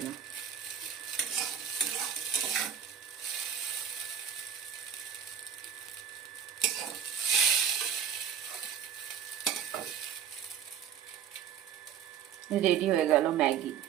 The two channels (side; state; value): left; quieter; 8.2 dB